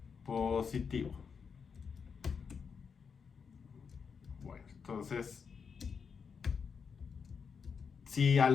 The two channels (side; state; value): right; quieter; 6.0 dB